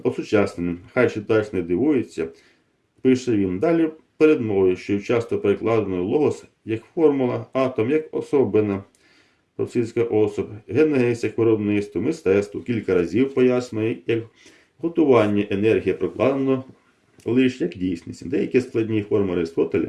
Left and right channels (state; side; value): identical; both; correlation 1.00